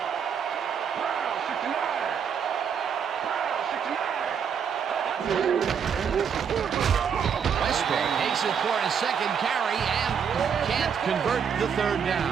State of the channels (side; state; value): left; quieter; 7.2 dB